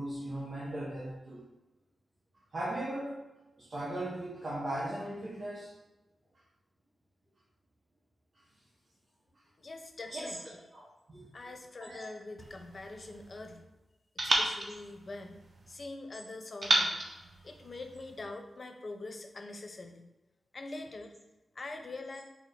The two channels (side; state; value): both; normal; correlation 0.91